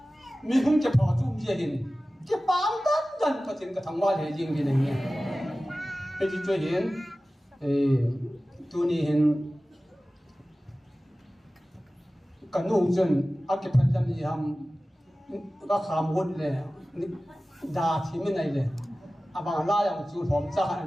mình không chụp họ chung gì hình cái bám tất gần có tiền cái thằng hoa để riêng cái này nhé cái gì chơi hiện tu ni hiện cái nụ chân ác cái phần làm gì ham các khám hôn này đa thì mình này này bằng la yang chú hòm cha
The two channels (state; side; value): normal; both; correlation 0.96